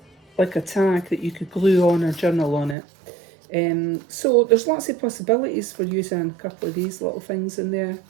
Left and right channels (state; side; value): drops out; left; at 2.8 s